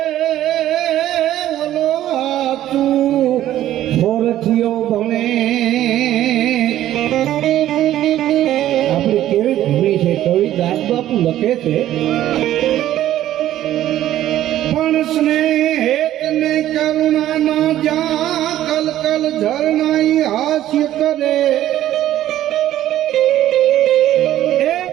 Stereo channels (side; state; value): left; quieter; 13.0 dB